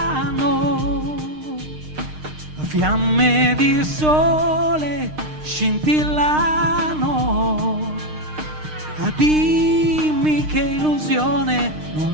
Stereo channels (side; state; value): left; late; 6.5 ms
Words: fiamme di sole scintillano. Dimmi che illusione